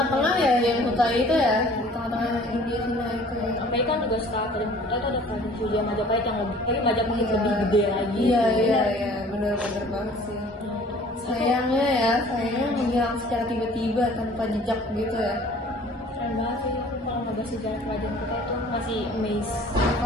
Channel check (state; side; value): normal; both; correlation 0.50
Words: ya yang Kuta itu ya, di tengah-tengah India Cina itu ya. Sampai kan juga setelah kerajaan Kuta itu ada kerajaan Sriwijaya Majapahit yang lebih, tapi Majapahit lebih gede lagi. Iya, benar-benar banget sih. Sayangnya menghilang secara tiba-tiba tanpa jejak gitu ya. Keren banget sih, aku kalau ngebahas sejarah kerajaan Kuta itu masih amazed.